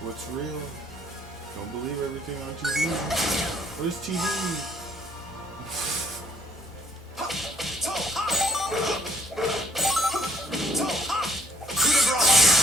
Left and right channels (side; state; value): both; normal; correlation 0.65